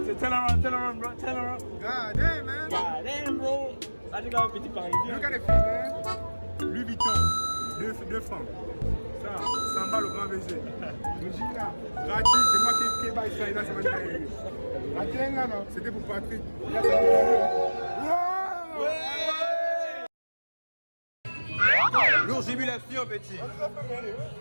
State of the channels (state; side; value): inverted; both; correlation -1.00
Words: C'est turn around, bro. Turn around. God damn, man. God damn, bro. Ah, tu as un petit parisien. Look at the feet, man. Louis Vuitton, 2 francs. Ça, 100 balles au grand baiser. Le jean là, gratuit, c'est moi qui baille ça, là, c'est moi qui baille. La tienne là, non, c'était pour Patrick. Là, c'est pour ouais. Lourd jubilation, petit.